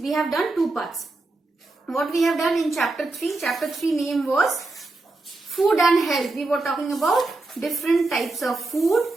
have done 2 parts. What we have done in chapter 3 name was food and health. We were talking about different types of food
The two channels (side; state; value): left; quieter; 3.2 dB